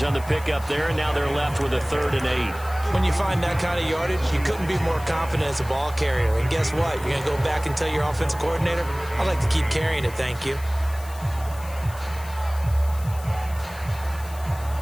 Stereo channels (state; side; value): noise; left; hiss, 18 dB below the sound